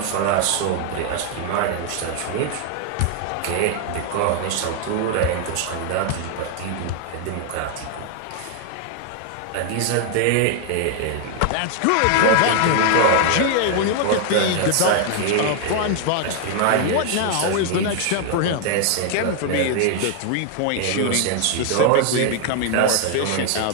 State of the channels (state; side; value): different; both; correlation 0.00